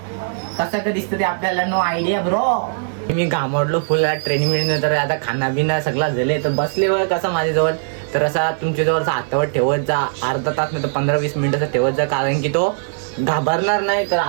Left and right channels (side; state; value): left; silent; digital silence